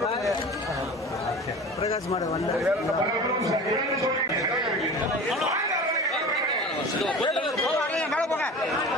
பிரகாஷ் மாட வந்த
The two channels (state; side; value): normal; both; correlation 0.36